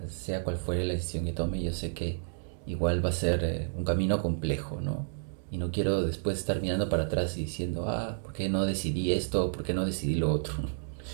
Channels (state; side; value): silent; left; digital silence